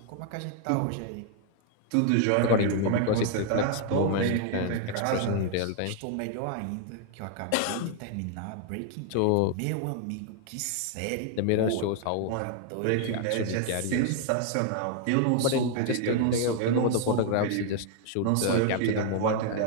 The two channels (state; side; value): different; both; correlation 0.00